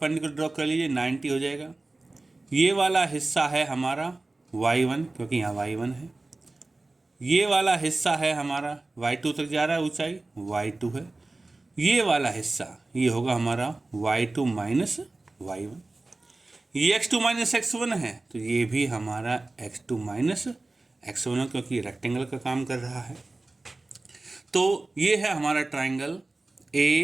ड्रॉ कर लीजिए, 90 हो जाएगा। ये वाला हिस्सा है हमारा y1 क्योंकि यहाँ y1 है। ये वाला हिस्सा है हमारा y2 तक जा रहा है, ऊंचाई y2 है। ये वाला हिस्सा ये होगा हमारा y2 माइनस y1। ये x2 माइनस x1 है तो ये भी हमारा x2 माइनस x1 है क्योंकि ये रेक्टेंगल का काम कर रहा है। तो ये है हमारा triangle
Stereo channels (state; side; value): quieter; left; 3.1 dB